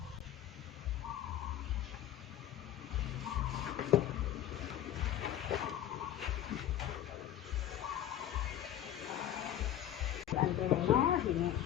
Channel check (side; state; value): right; quieter; 11.4 dB